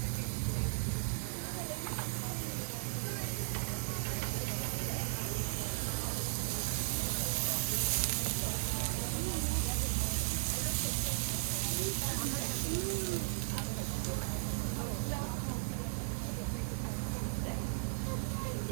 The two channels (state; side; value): silent; left; digital silence